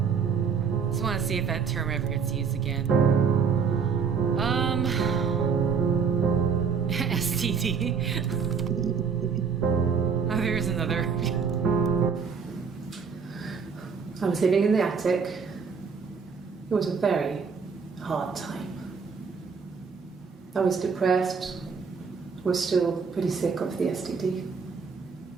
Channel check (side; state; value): left; quieter; 5.9 dB